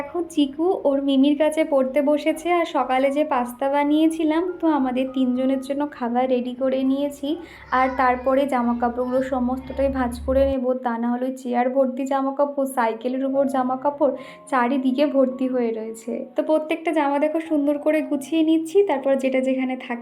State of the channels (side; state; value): both; identical; correlation 1.00